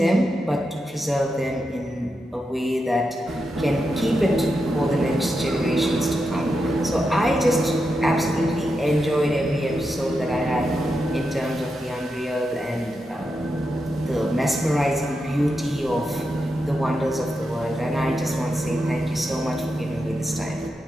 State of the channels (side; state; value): both; normal; correlation 0.86